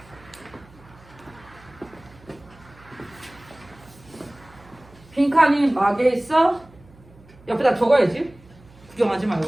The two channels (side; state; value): right; noise; hum, 25 dB below the sound